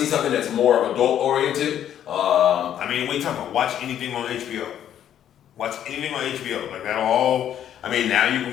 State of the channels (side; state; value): right; quieter; 10.3 dB